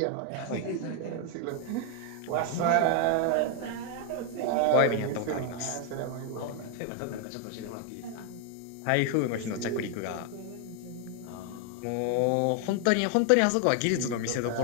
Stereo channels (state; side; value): different; both; correlation 0.01